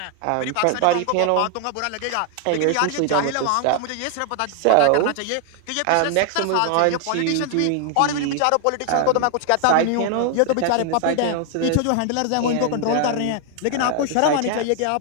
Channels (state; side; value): different; both; correlation 0.00